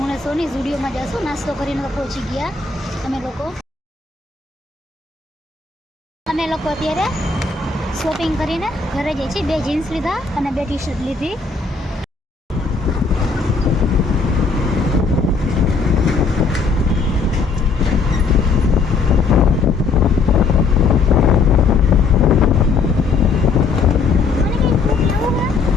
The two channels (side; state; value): right; quieter; 4.5 dB